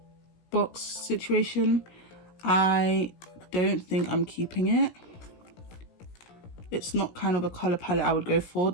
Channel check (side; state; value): right; late; 17 ms